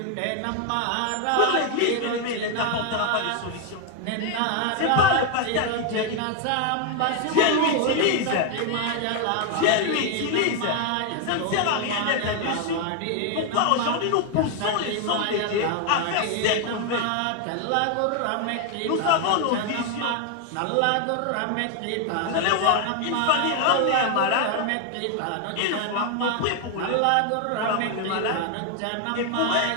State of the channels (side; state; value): both; different; correlation 0.01